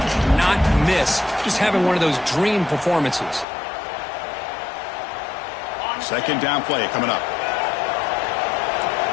miss just having one of those dream performances. Second down play coming up.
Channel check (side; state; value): right; drops out; at 3.5 s